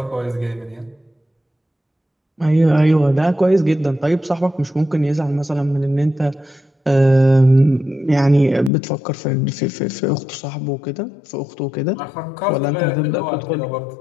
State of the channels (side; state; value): right; drops out; at 8.7 s